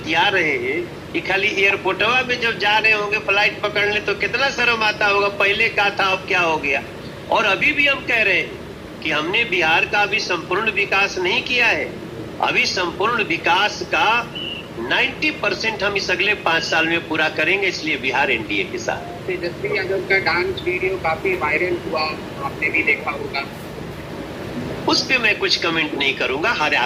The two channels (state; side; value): identical; both; correlation 1.00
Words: रहे हैं कि खाली एयरपोर्टवा में जब जा रहे होंगे फ्लाइट पकड़ने तो कितना शर्म आता होगा, पहले क्या था अब क्या हो गया। और अभी भी हम कह रहे हैं कि हमने बिहार का अभी संपूर्ण विकास नहीं किया है। अभी संपूर्ण विकास का 90% हम इस अगले 5 साल में पूरा करेंगे, इसलिए बिहार एनडीए के साथ। तेजस्वी यादव का डांस वीडियो काफी वायरल हुआ, आपने भी देखा होगा। उस पे मैं कुछ कमेंट नहीं करूंगा। हर